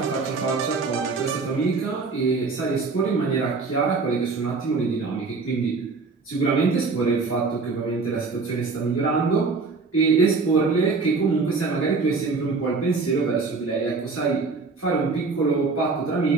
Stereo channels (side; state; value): left; quieter; 4.3 dB